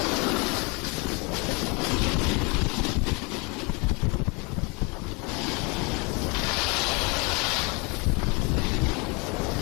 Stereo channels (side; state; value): right; quieter; 30.1 dB